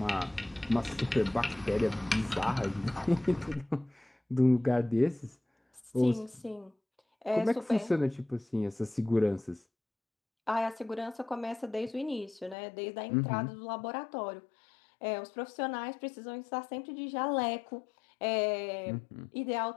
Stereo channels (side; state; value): right; drops out; at 12.6 s